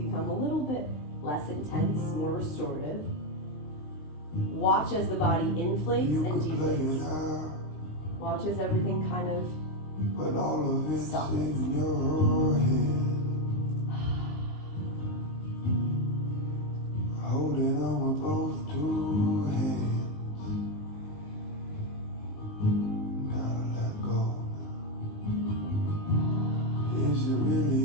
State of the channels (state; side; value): late; right; 19 ms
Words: a little bit less intense, more restorative, watch as the body inflates and deflates. Watch as everything kind of softens. Holding on with both two hands. Gotta let go. Is it really